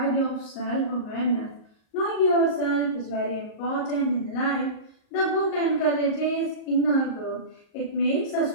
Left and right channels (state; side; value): late; right; 38 ms